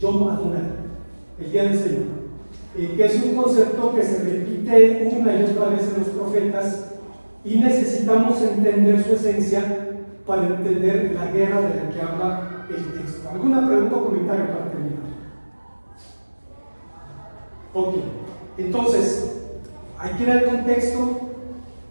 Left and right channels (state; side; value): inverted; both; correlation -1.00